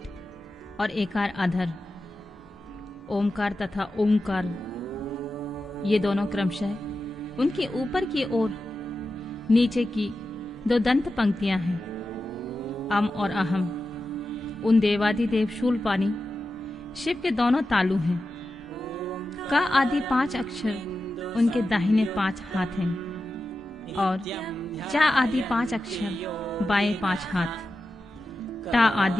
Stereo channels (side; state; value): both; normal; correlation 0.92